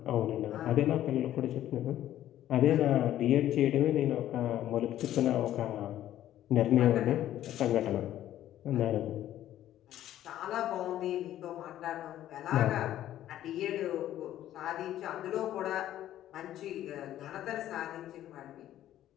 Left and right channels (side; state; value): right; quieter; 12.6 dB